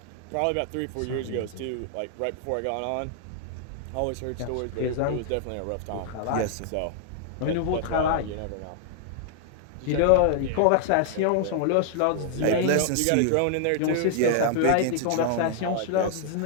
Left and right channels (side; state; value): both; different; correlation -0.01